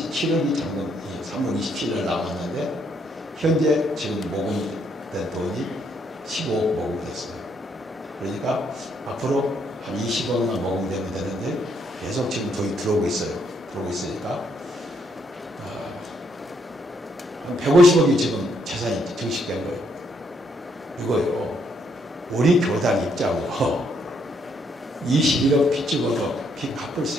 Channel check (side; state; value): both; normal; correlation 0.73